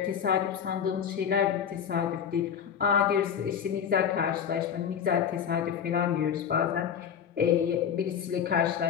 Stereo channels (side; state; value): right; quieter; 8.1 dB